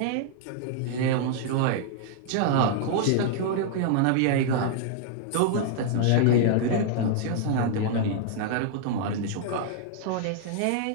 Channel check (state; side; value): different; both; correlation -0.01